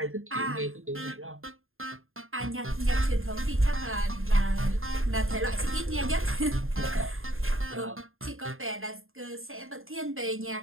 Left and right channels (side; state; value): left; late; 0.61 ms